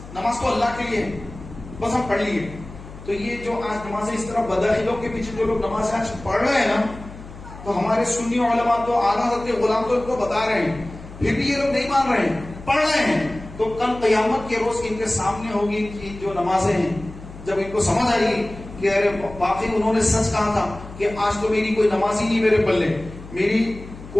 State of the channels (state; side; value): noise; left; hum, 15 dB below the sound